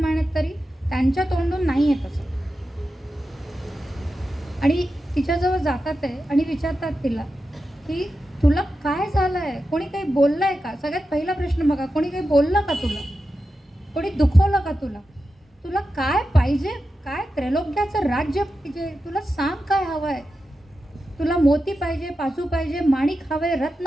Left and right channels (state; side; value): normal; both; correlation 0.90